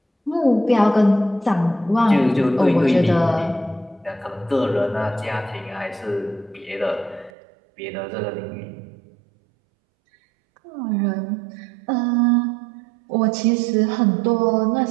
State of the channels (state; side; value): drops out; left; at 7.3 s